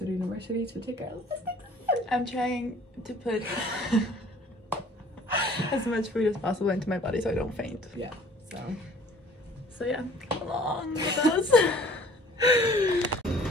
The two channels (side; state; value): both; normal; correlation 0.52